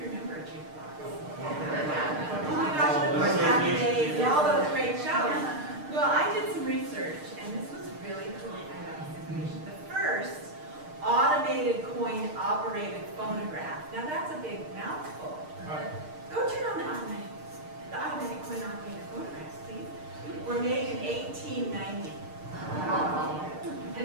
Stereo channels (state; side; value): late; left; 6.6 ms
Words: remember a jukebox? Oh my gosh, and of course, Happy Days and all those great shows. Well, I did some research, and this was really cool. I got this information. The first automated coin-operated phonograph. Now, that's a big mouthful. Go turn on the automatic coin-operated phonographs, please. Were made in 1890.